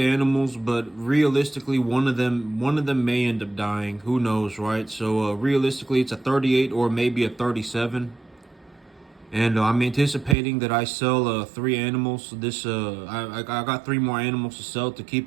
but realistically, one of them may end up dying. Who knows, right? So realistically, it's a 38 or maybe a 37. And I'm anticipating that I sell 3 animals. I got 3 more animals to sell to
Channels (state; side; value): drops out; left; at 10.4 s